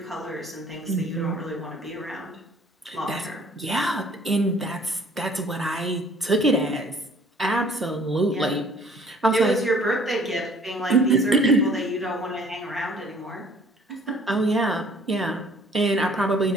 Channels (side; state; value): both; normal; correlation 0.55